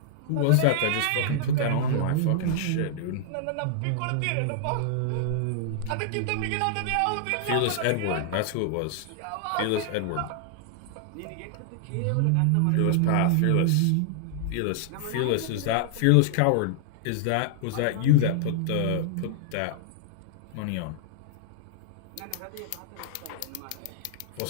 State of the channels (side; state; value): both; different; correlation -0.01